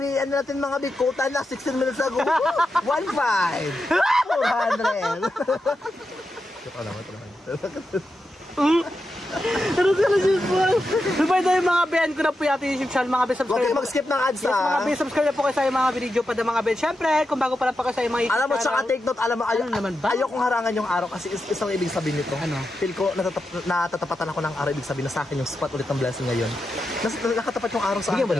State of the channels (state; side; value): normal; both; correlation 0.88